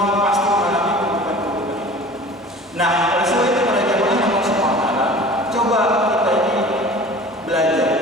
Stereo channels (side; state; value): both; normal; correlation 0.42